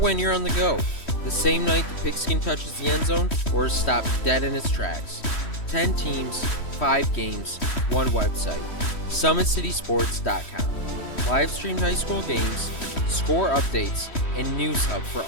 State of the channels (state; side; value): late; right; 3.1 ms